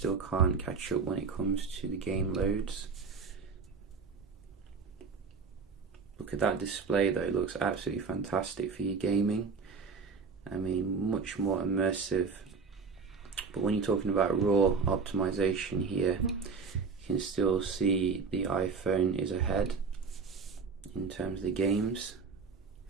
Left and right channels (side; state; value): left; quieter; 5.1 dB